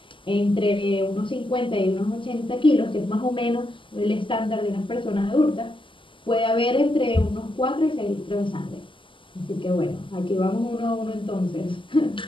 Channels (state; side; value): late; right; 0.25 ms